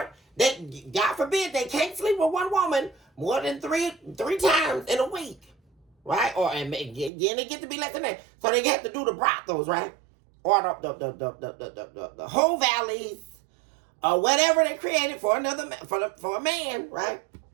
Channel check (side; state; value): left; drops out; at 7.1 s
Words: God forbid, they can't sleep with one woman more than three times in a week. Right? And they get to be less than that. So they have to do the brothels, right? Or the whole valleys, or whatever they created for for a man, right?